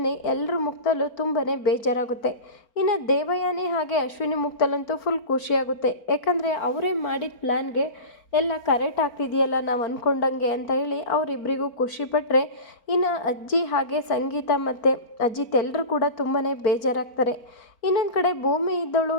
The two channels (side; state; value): right; late; 4.4 ms